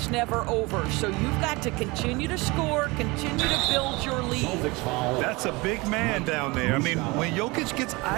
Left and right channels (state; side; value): quieter; left; 24.4 dB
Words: never over. So you've got to continue to score, continue to build your lead. That's a big man down there. I mean, when Jokic gets